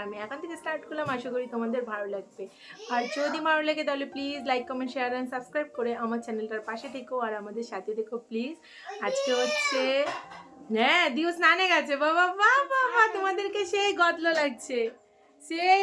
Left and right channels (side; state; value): both; identical; correlation 1.00